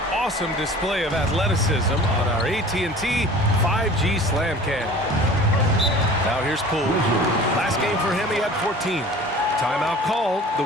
awesome display of athleticism on our AT&T 5G Slam Cam. Now here's Poole. Last game for him, he had 14. Timeout called, the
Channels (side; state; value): both; normal; correlation 0.43